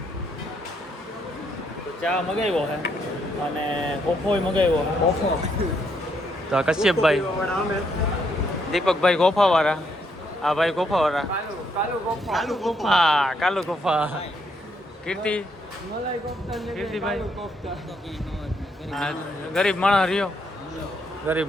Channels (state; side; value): normal; both; correlation 0.74